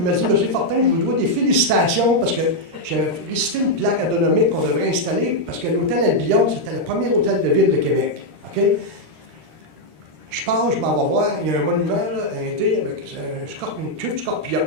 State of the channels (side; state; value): left; late; 13 ms